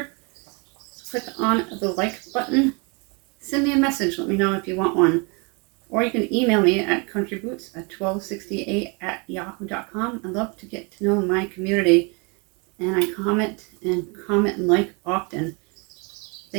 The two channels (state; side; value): quieter; left; 31.7 dB